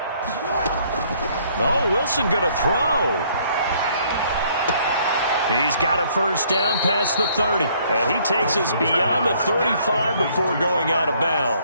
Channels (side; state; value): both; inverted; correlation -0.63